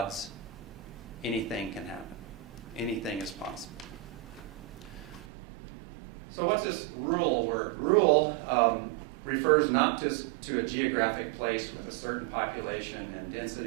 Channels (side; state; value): left; drops out; at 5.2 s